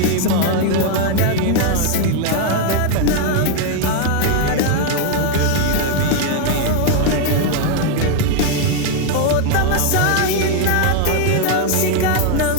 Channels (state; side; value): different; both; correlation 0.01